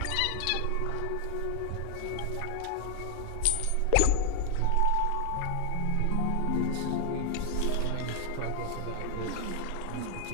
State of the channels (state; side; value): different; both; correlation 0.01